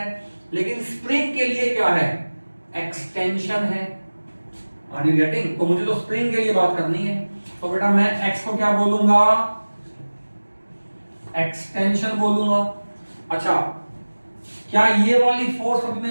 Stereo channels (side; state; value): both; inverted; correlation -1.00